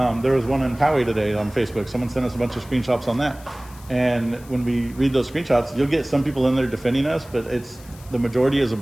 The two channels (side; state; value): left; noise; hiss, 23 dB below the sound